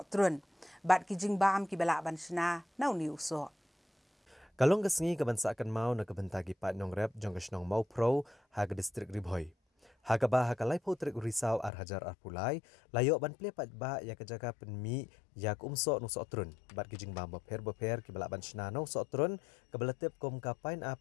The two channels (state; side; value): drops out; right; at 11.7 s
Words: trun. Bat ki jing bam ki balak ban sena na uni usok. Kalong kesengi kebansakan mau na kebentagi pat nong rep jong kesenong mau pro ha ke distrik Ribhoi. Ha ke bah ha ke laipo trik risau ar hajar ar pulai, layok ban ple pat ba ya ke jaga penmi ya ke umso nusok trun. Bat ki jing bam beper ki balak ban sena na usok trun ke beletip kom ka